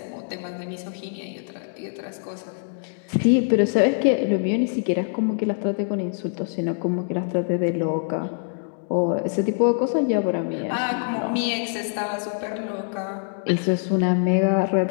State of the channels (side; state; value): right; silent; digital silence